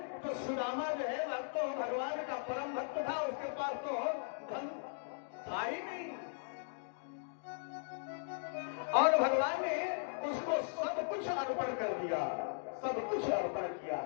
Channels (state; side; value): silent; right; digital silence